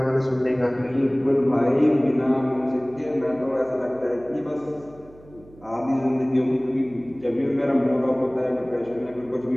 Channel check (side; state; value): right; noise; hum, 24 dB below the sound